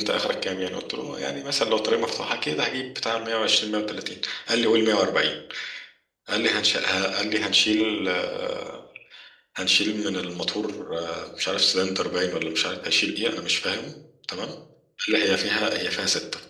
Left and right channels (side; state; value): both; identical; correlation 1.00